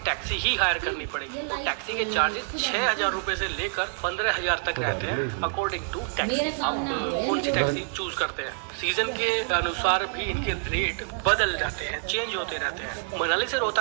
टैक्सी ही हायर करनी पड़ेगी। तो टैक्सी के चार्जेस 6000 रुपए से लेकर 15000 तक रहते हैं अकॉर्डिंग टू टैक्सी। आप कौन सी टैक्सी चूज करते हैं, सीजन के अनुसार भी इनके रेट बदल जाते हैं, चेंज होते रहते हैं। मनाली से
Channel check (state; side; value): silent; left; 58 dB below the other